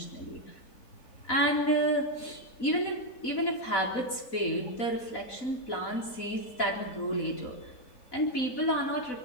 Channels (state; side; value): late; right; 4.0 ms